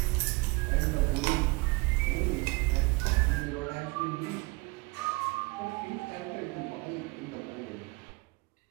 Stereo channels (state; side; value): quieter; left; 25.2 dB